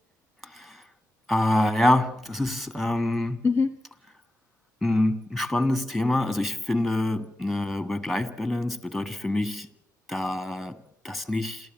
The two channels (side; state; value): both; normal; correlation 0.93